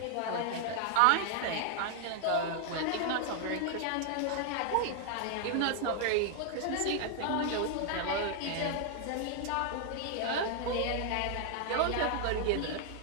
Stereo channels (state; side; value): different; both; correlation 0.00